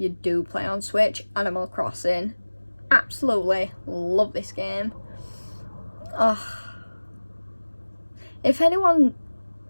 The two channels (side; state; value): both; inverted; correlation -1.00